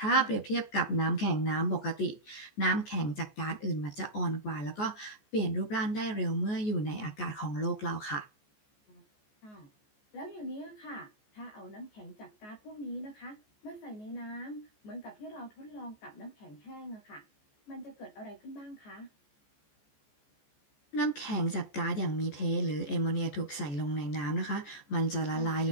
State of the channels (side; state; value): right; late; 14 ms